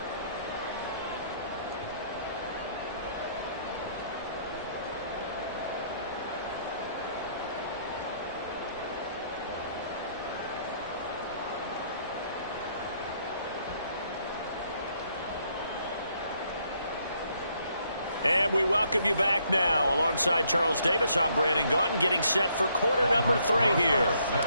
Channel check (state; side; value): inverted; both; correlation -0.70